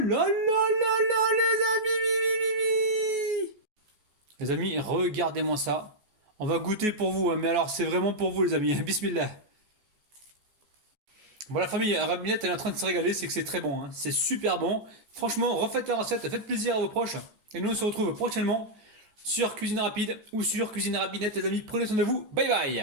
là là les amis, les amis, regardez-moi ça. On va goûter pour vous, hein, mais alors c'est vraiment pour vous les amis. Bismillah. Bon la famille, Rabinette elle est en train de se régaler, c'est que c'est très bon, hein. C'est super bon. Franchement, refaites la recette, faites plaisir à vos proches. Et nous on se retrouve prochainement sur Cuisine Rapide ou sur Cuisine Rabinette les amis. Prenez soin de vous, bye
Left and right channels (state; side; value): late; left; 14 ms